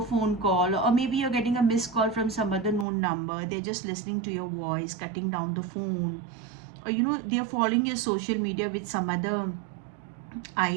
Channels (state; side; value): drops out; left; at 2.9 s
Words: call, or maybe you're getting a missed call from some other known number. They're just listening to your voice, cutting down the phone, or they're following your social media with some other